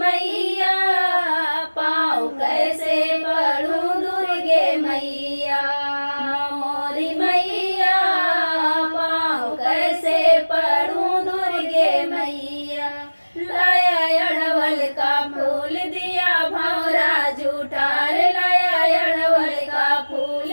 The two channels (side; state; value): both; inverted; correlation -1.00